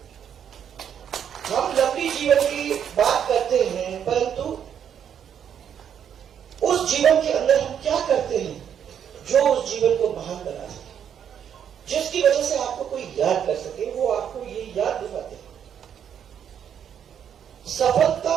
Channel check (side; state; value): left; quieter; 8.7 dB